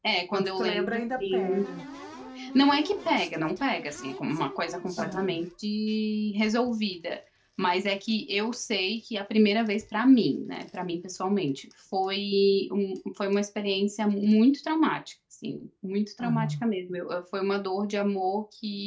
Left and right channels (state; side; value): identical; both; correlation 1.00